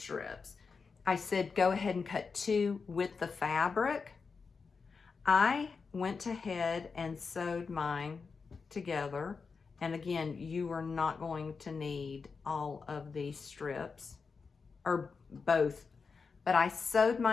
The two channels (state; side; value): quieter; right; 5.0 dB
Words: I said go ahead and cut 2 with the fabric. I went ahead and sewed mine together. And again, you are not going to need all of these strips, or both, but I sewed